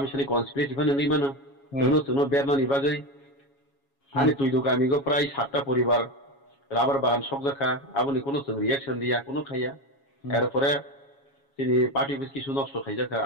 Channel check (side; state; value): right; late; 7.2 ms